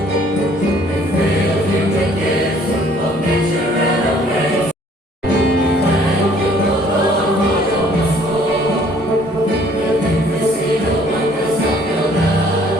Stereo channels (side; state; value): both; normal; correlation 0.59